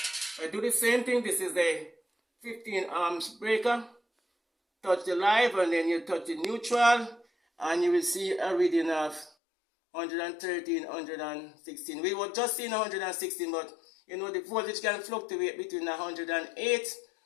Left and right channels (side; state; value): right; drops out; at 9.3 s